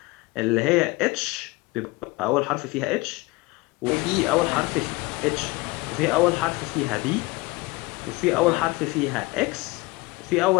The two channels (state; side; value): quieter; right; 22.7 dB